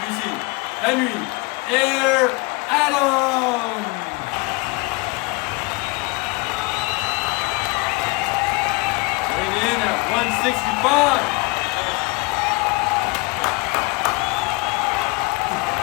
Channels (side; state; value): right; quieter; 27.0 dB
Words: Henry Air Adams. Weighing in at 165.